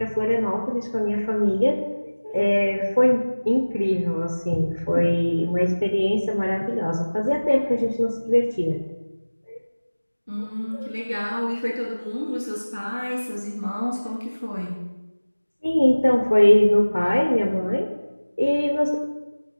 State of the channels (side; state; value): both; inverted; correlation -1.00